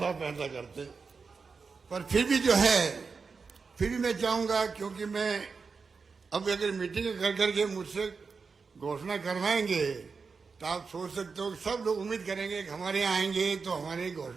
फैसला करते, पर फिर भी जो है, फिर भी मैं चाहूंगा, क्योंकि मैं अब अगर मीटिंग कर करके मुझसे घोषणा करवाएंगे तो आप सोच सकते हो कि सब लोग उम्मीद करेंगे कि हमारे यहाँ आएंगे तो हमारी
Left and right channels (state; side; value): quieter; left; 4.9 dB